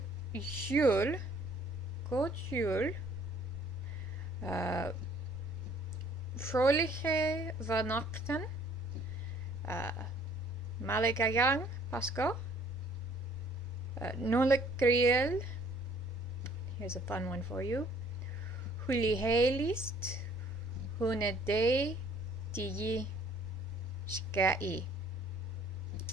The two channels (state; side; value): normal; both; correlation 0.58